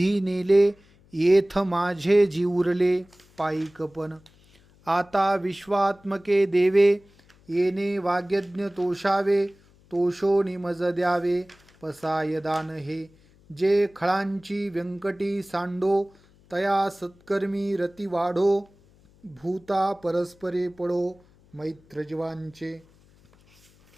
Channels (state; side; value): noise; left; hum, 29 dB below the sound